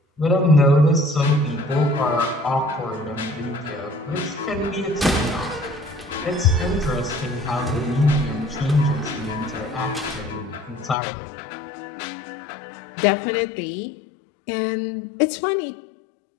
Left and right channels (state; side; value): drops out; right; at 11.0 s